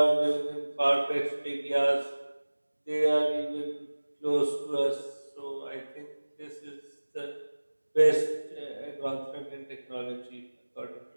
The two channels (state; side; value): inverted; both; correlation -1.00